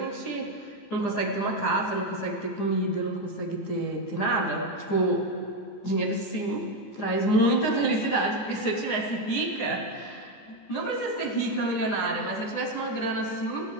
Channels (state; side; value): late; right; 14 ms